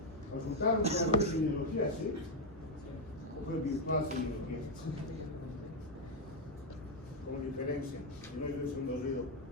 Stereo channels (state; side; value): normal; both; correlation 0.03